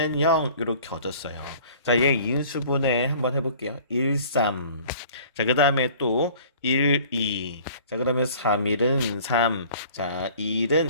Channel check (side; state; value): both; inverted; correlation -0.49